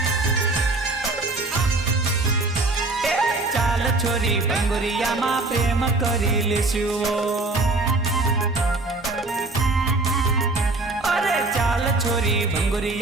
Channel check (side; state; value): left; quieter; 3.2 dB